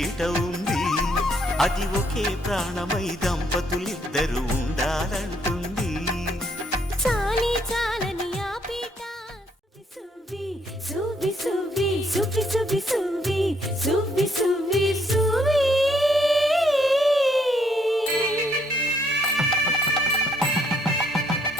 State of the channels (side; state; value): both; normal; correlation 0.69